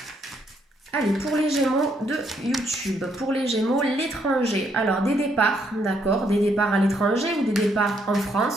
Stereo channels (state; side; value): normal; both; correlation 0.73